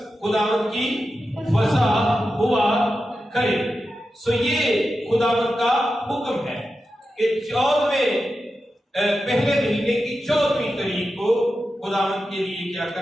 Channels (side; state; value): both; normal; correlation 0.91